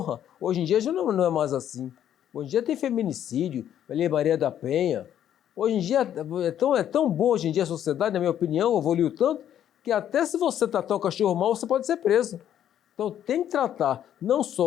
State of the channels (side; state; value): right; quieter; 10.5 dB